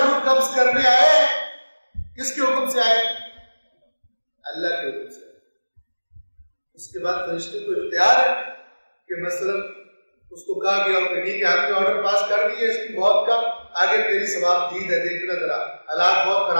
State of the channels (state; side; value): inverted; both; correlation -1.00